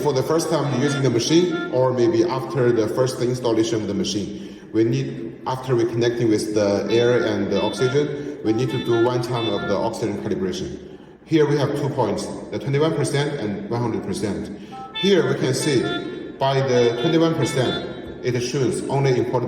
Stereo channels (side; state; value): both; identical; correlation 1.00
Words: the first time using the machine, or maybe after the first installation of the machine, we need, after we connecting with the air and the oxygen, we need to do one time of the oxygen calibration. Here we have 2 points, the 21% and 100%. Here we can see by the 21%, it shows only